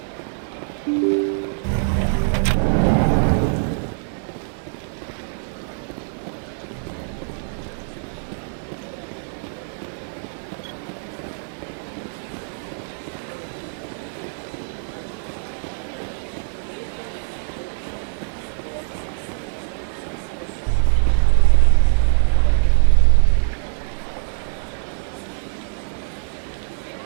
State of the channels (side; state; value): left; silent; digital silence